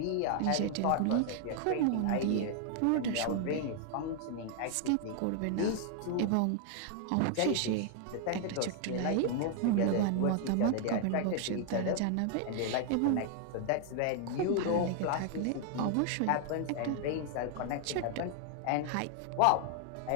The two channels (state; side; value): different; both; correlation 0.00